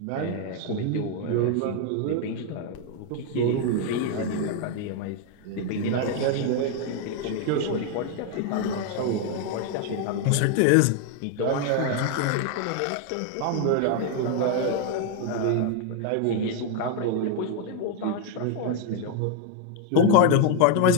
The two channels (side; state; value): both; different; correlation 0.00